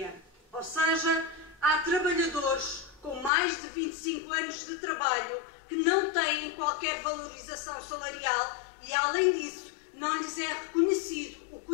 Ou seja, há trabalhadores com mais de 25 anos de trabalho que não têm qualquer valorização salarial e, além disso, não lhes é reconhecido o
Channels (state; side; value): drops out; right; at 3.3 s